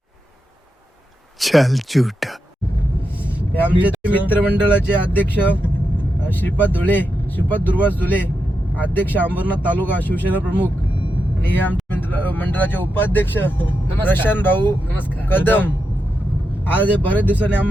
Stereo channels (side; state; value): both; normal; correlation 0.86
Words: चल झूठा. हे आमचे मित्रमंडळाचे अध्यक्ष श्रीपाद दुर्वास धुले, अध्यक्ष अंबरनाथ तालुका शिवसेना प्रमुख, आणि हे आमच्या मंडळाचे उपाध्यक्ष प्रशांत भाऊ कदम. आज हे बरेच दिवसांनी